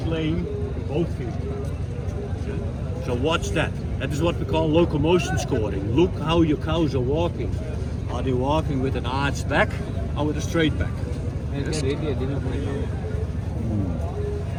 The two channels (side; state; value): both; identical; correlation 1.00